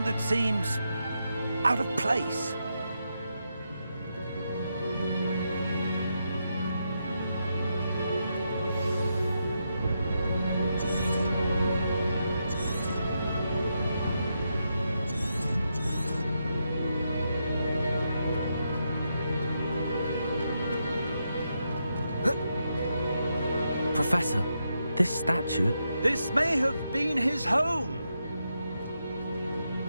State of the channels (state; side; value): inverted; both; correlation -0.83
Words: that seems out of place. Professor, this statue... This may have been his home.